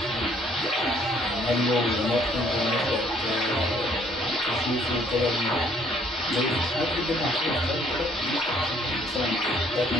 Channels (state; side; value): normal; both; correlation 0.62